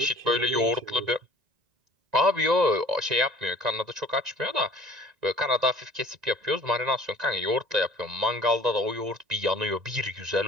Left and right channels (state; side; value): late; left; 1.9 ms